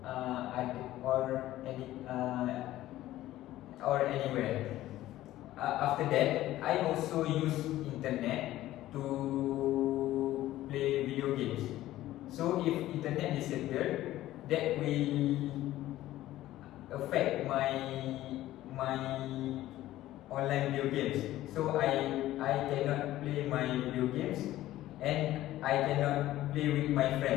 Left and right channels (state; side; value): quieter; right; 14.9 dB